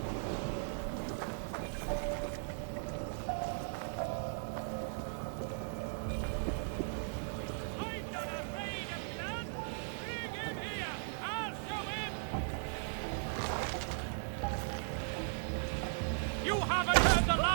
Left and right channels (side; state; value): left; silent; digital silence